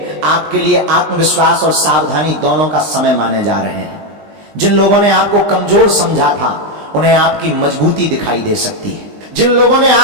आपके लिए आत्मविश्वास और सावधानी दोनों का समय माने जा रहे हैं। जिन लोगों ने आपको कमजोर समझा था, उन्हें आपकी मजबूती दिखाई दे सकती है। जिन लोगों ने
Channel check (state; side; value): late; left; 20 ms